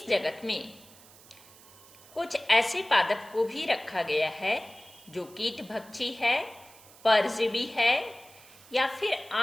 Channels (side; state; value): right; noise; hiss, 23 dB below the sound